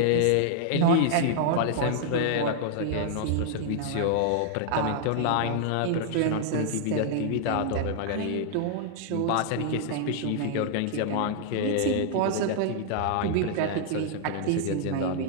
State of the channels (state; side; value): different; both; correlation -0.01